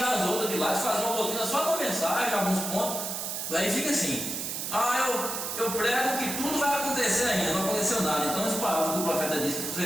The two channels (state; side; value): noise; right; hiss, 4 dB below the sound